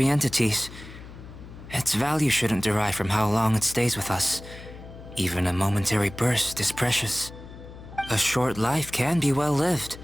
entities. Its value shouldn't derive from how long it stays with us. Even a momentary burst is precious. A short life can be well lived.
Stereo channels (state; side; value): noise; left; hum, 15 dB below the sound